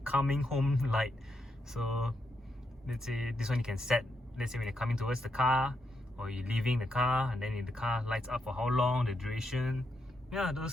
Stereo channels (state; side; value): normal; both; correlation 0.82